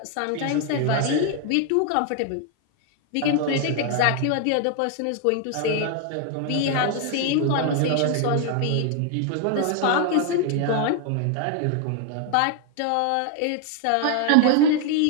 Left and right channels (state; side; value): different; both; correlation 0.00